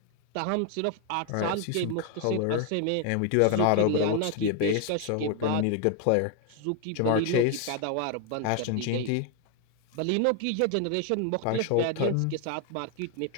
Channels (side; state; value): both; different; correlation 0.01